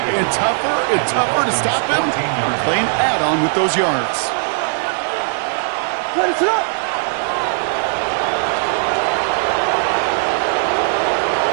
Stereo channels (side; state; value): left; silent; digital silence